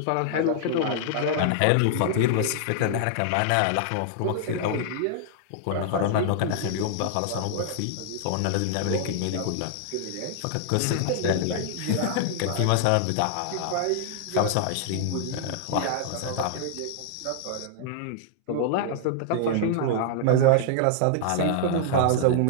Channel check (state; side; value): different; both; correlation 0.00